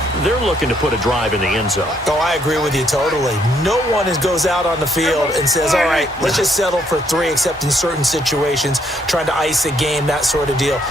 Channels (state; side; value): normal; both; correlation 0.71